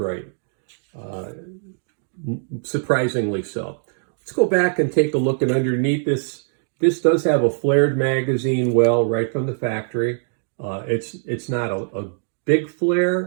Surprisingly so. Let's go back and take a look at underneath this. This does have a flared magazine well right from the factory. It's not a big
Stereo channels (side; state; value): left; silent; digital silence